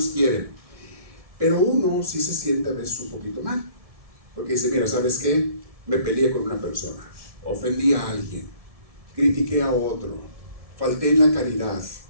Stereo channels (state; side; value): late; left; 1.7 ms